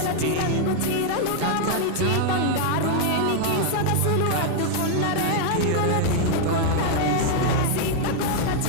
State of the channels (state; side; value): different; both; correlation 0.00